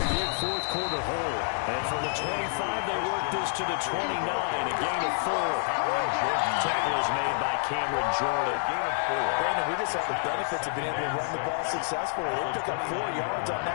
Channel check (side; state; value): right; silent; digital silence